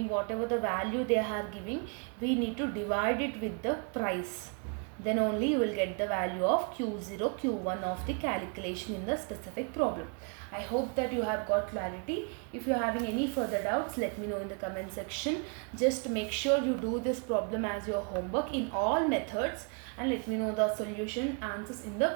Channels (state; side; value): quieter; left; 37.5 dB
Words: whatever the value they are giving, we need to divide it with the price. Then only you will get the value of Q0 Q1 of the calculation in the specific problem. I hope that you have got clarity. If you are having any further doubts, let me know in the comment section. Just make sure you do this problem as your homework in all methods and let me know the solution answers in